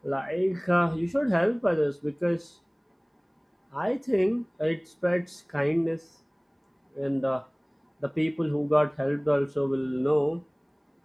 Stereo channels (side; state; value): both; identical; correlation 1.00